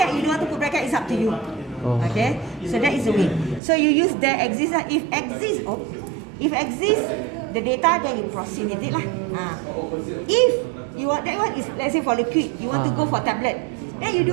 you don't want to put bracket, it's up to you. Okay, so that is the way. So you use there exists. If exists the data, then you proceed with it lah. If you want that one is, let's say for liquid, you want to go for tablet, then you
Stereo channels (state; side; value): drops out; left; at 3.6 s